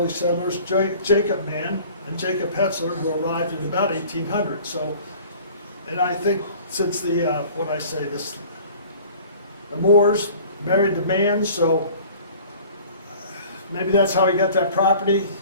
settlers, Jacob Mann and Jacob Hetzler, who arrived in about 1800. So, and I think since the, the Moors married the Manns, so maybe that's how he got that property,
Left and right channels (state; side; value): inverted; both; correlation -0.47